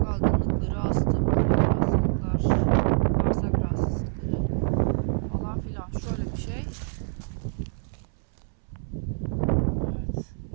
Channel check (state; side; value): silent; left; 61 dB below the other